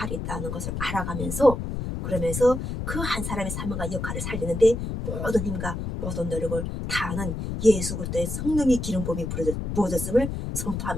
있다는 것을 알아가면서 그러면서 그 한 사람의 사명과 역할을 살리는데 모든 힘과 모든 노력을 다하는 예수 그리스도의 성령의 기름 부음이 부어졌음을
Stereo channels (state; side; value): noise; left; rumble, 4 dB below the sound